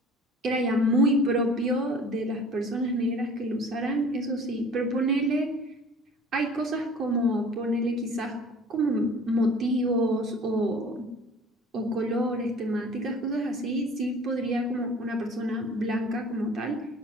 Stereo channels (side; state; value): both; normal; correlation 0.46